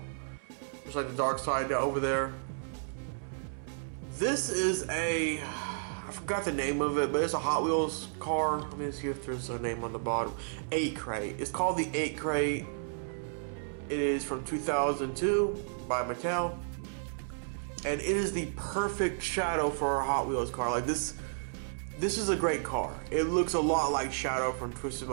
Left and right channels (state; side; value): silent; left; 56 dB below the other